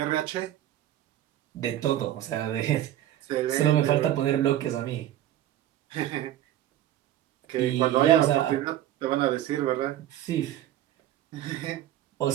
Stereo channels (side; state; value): left; quieter; 12.8 dB